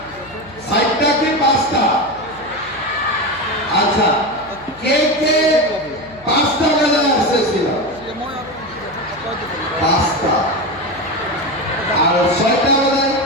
4টা কি 5টা? আচ্ছা, কে 5টা বাজায় আসছিল? 5টা। আর 6টা বাজায়?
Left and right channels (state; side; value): noise; left; hum, 23 dB below the sound